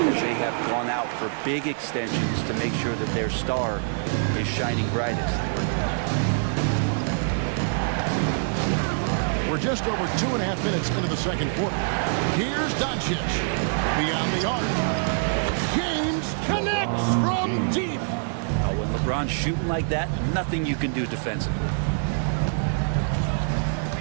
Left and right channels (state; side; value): silent; left; 61 dB below the other